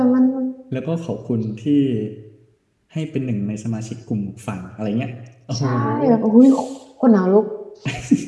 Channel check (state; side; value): identical; both; correlation 1.00